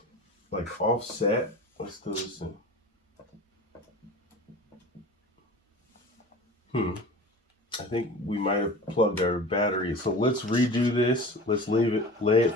like offset? Let's do this in. I think we might have plugged our battery. So let's redo this. Let's lay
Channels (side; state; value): both; normal; correlation 0.37